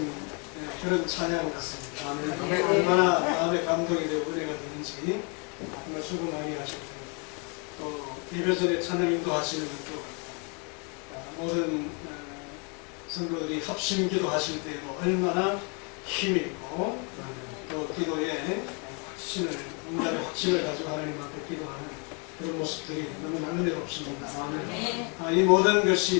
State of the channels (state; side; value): quieter; right; 35.0 dB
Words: 그런 찬양 같습니다. 얼마나 마음에 감동이 되고 은혜가 되는지 정말 수고 많이 하셨고요. 또 예배전에 찬양 인도하시는 것도 모든 성도들이 합심기도 하실 때도 얼마나 힘있고 또 기도에 응답의 확신을 가지고 하나님 앞에 기도하는 그런 모습들이 너무나 은혜롭습니다. 이 모든